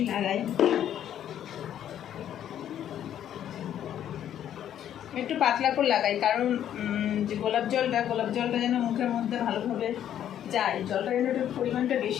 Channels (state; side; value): quieter; right; 10.5 dB